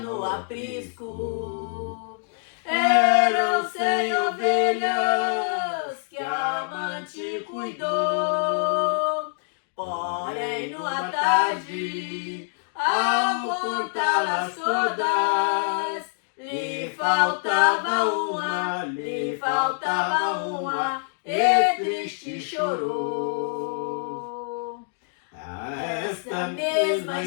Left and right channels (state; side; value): silent; right; 61 dB below the other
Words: no aprisco. Eram 100 ovelhas que a amante cuidou. Porém, numa tarde, ao contá-las todas, lhe faltava uma, e triste chorou. Esta mesma